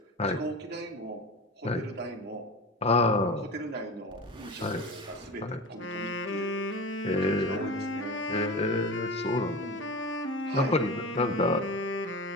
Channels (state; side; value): normal; both; correlation 0.30